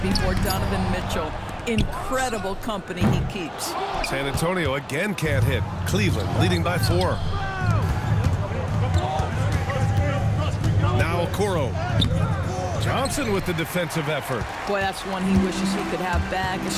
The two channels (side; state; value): both; identical; correlation 1.00